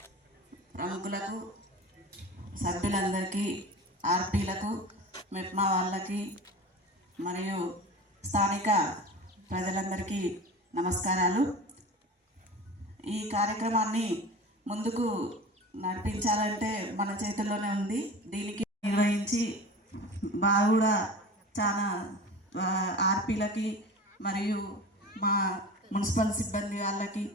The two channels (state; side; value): normal; both; correlation 0.33